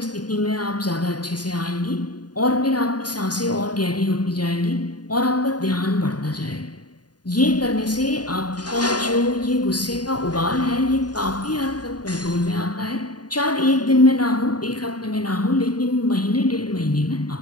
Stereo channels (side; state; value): right; late; 0.69 ms